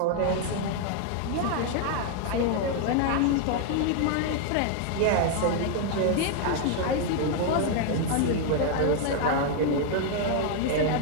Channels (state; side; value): different; both; correlation 0.00